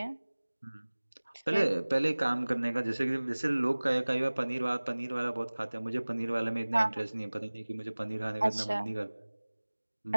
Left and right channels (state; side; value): inverted; both; correlation -1.00